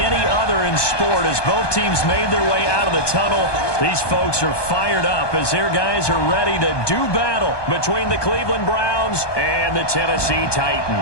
other in sport as both teams made their way out of the tunnel. These folks are fired up as their guys are ready to do battle between the Cleveland Browns and the Tennessee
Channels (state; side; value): late; right; 1.2 ms